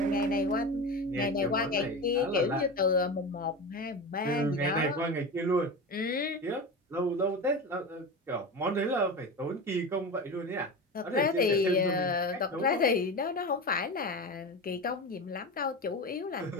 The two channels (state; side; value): normal; both; correlation 0.25